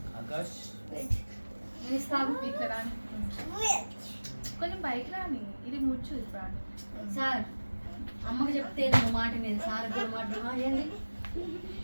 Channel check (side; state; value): both; inverted; correlation -1.00